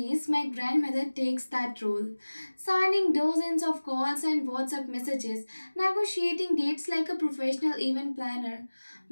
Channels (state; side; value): inverted; both; correlation -1.00